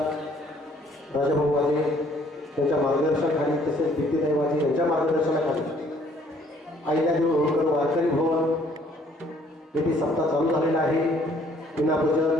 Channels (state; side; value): normal; both; correlation 0.61